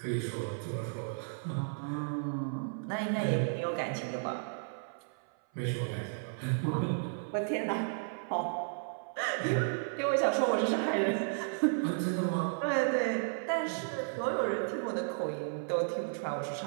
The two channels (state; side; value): silent; left; 55 dB below the other